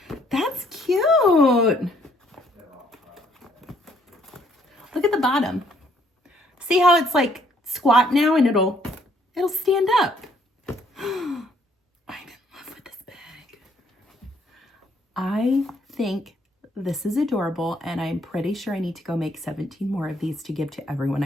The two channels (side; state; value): both; normal; correlation 0.65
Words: That's cute. Look at the bottom. See how it's like squat now and it'll stand up. I'm in love with this bag. I think this is adorable, and I'm pretty sure I need to go make 17 more of these to give to everyone